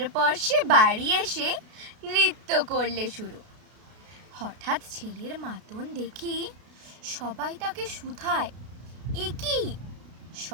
সে বাড়ি এসে নৃত্য করলে শুরু। হঠাৎ ছেলের মাতন দেখি সবাই তাকে শুধায়, এ কি?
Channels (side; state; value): left; late; 33 ms